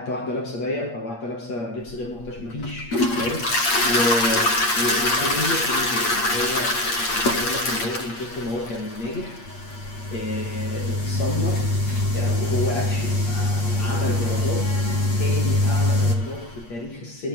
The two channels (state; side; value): late; right; 8.5 ms